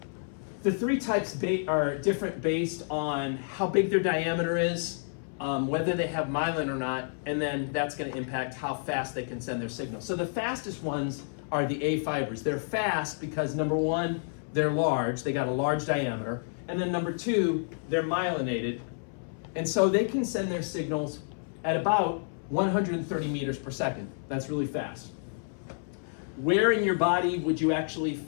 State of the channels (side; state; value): right; silent; 58 dB below the other